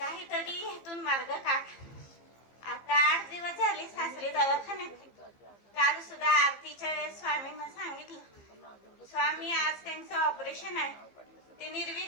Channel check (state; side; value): late; right; 15 ms